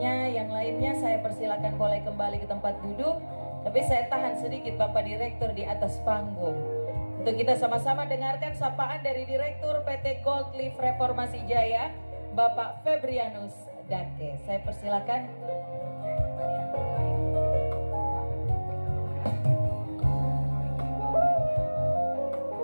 yang lainnya saya persilakan boleh kembali ke tempat duduk. Tapi saya tahan sedikit Bapak Direktur di atas panggung untuk kita sama-sama dengarkan sapaan dari Direktur PT Gold Leaf Reformasi Jaya, Bapak Febrianus Dake. Saya persilakan.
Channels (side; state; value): both; inverted; correlation -1.00